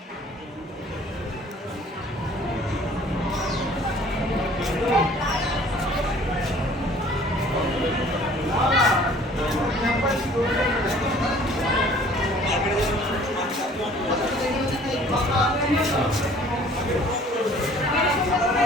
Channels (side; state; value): both; normal; correlation 0.53